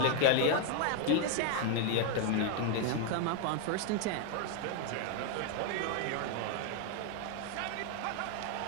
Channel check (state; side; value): different; both; correlation 0.01